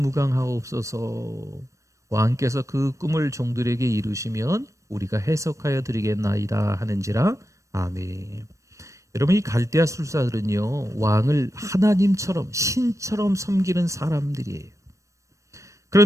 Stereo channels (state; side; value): late; left; 0.15 ms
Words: 왕께서 그 꿈을 종들에게 이루시면 우리가 해석하여 드리겠나이다 하는지라. 아멘. 여러분, 이 갈대아 술사들은요, 왕을 하나님처럼 신처럼 섬기는 사람들이에요.